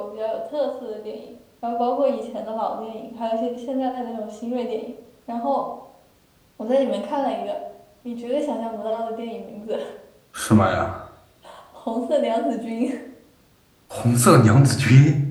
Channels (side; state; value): both; identical; correlation 1.00